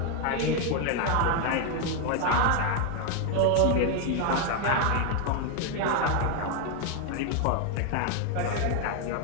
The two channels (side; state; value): both; different; correlation 0.01